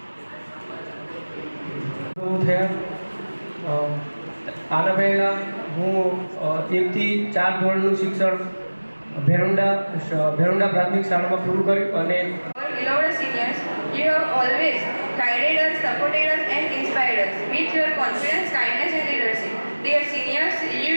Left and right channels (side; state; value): both; inverted; correlation -1.00